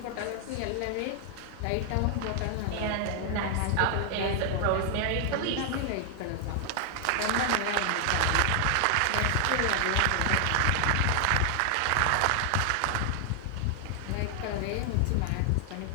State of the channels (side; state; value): both; different; correlation 0.00